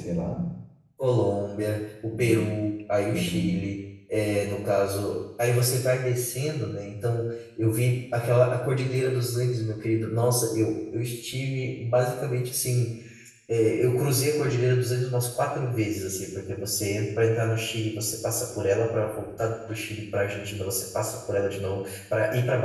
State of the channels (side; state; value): both; identical; correlation 1.00